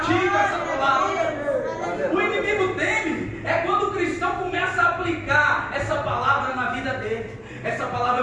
essa palavra. O inimigo teme é quando o cristão começa a aplicar essa palavra na vida dele. Essa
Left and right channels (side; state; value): both; identical; correlation 1.00